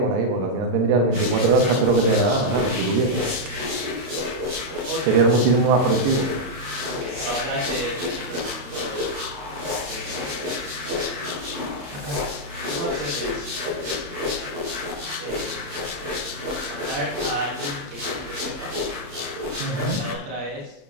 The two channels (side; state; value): left; late; 35 ms